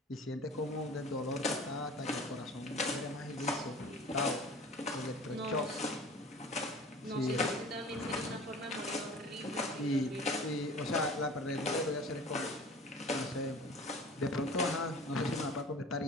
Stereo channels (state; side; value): normal; both; correlation 0.42